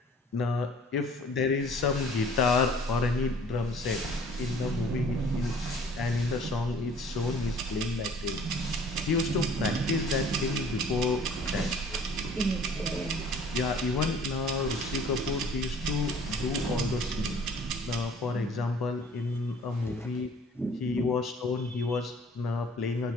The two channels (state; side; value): normal; both; correlation 0.52